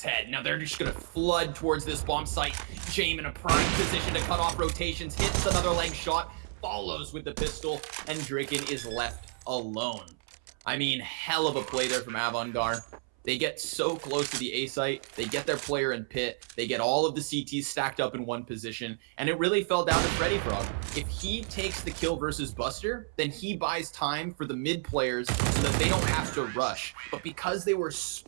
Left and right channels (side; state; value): left; silent; 57 dB below the other